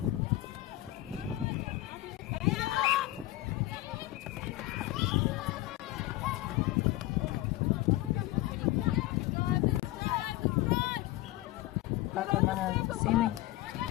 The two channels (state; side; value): quieter; right; 16.9 dB